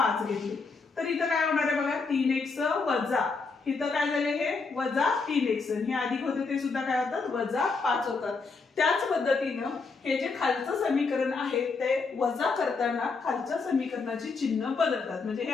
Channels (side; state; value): right; quieter; 4.4 dB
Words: घेतले तर इथं काय होणार आहे बघा, 3x वजा इथं काय झाले हे वजा 3x, हे अधिक होते ते सुद्धा काय होतात, वजा 5 होतात. त्याच पद्धतीनं हे जे खालचं समीकरण आहे ते वजा करताना खालच्या समीकरणाची चिन्ह बदलतात. म्हणजे हे